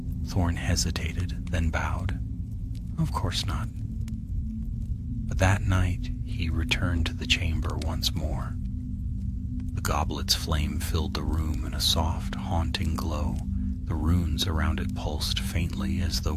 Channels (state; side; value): identical; both; correlation 1.00